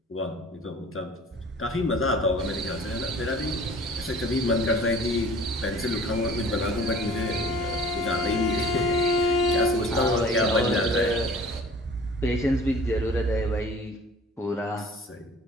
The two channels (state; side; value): normal; both; correlation 0.47